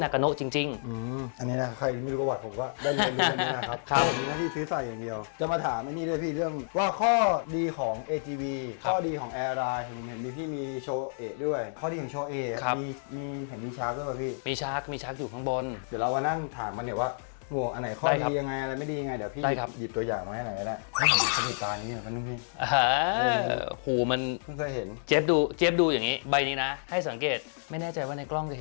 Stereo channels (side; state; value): right; silent; digital silence